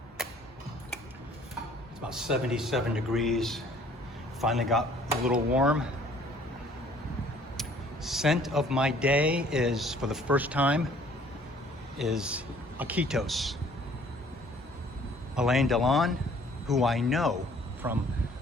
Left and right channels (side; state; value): both; normal; correlation 0.56